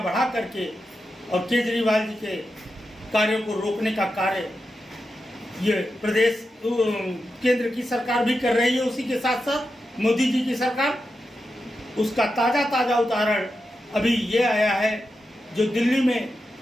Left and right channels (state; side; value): normal; both; correlation 0.89